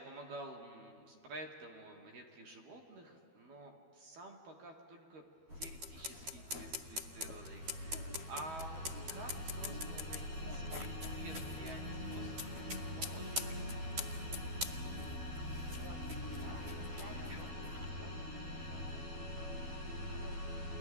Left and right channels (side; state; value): left; late; 12 ms